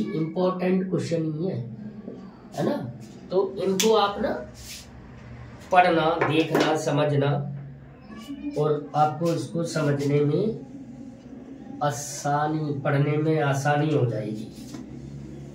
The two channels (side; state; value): both; identical; correlation 1.00